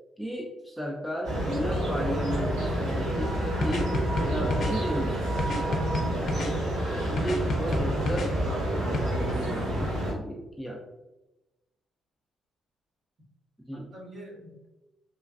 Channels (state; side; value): normal; both; correlation 0.78